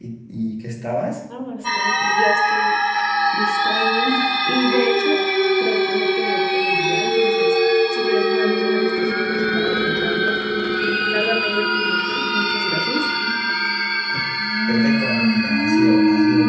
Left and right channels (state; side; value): identical; both; correlation 1.00